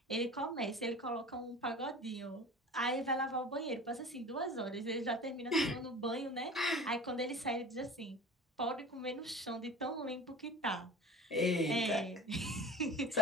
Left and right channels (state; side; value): normal; both; correlation 0.40